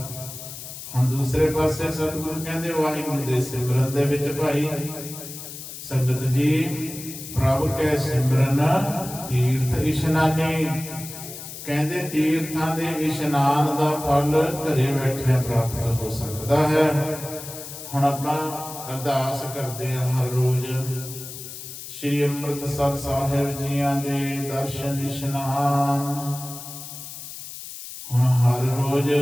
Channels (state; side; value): noise; left; hiss, 11 dB below the sound